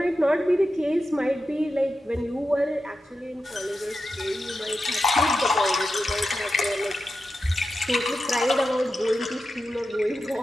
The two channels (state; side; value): normal; both; correlation 0.90